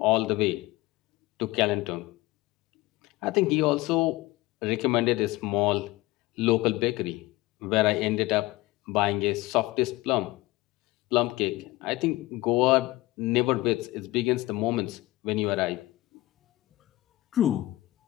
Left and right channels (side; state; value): right; quieter; 19.2 dB